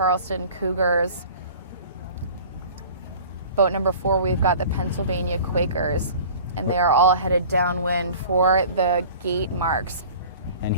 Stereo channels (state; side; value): inverted; both; correlation -0.44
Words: Cougars. Boat number 4, we've got the Pennsylvania Quakers. And they are all headed downwind for the gate marks. And